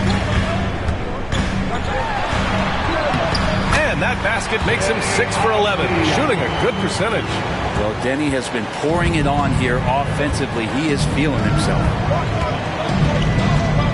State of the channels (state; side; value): identical; both; correlation 1.00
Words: And that basket makes him 6 for 11, shooting a good percentage. Well, Denny has been pouring it on here offensively. He is feeling himself.